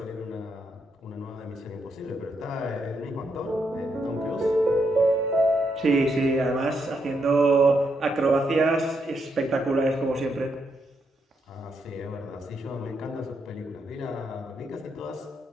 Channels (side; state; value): both; normal; correlation 0.79